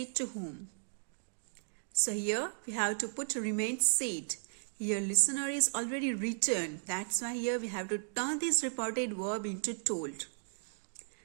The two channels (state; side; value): silent; left; digital silence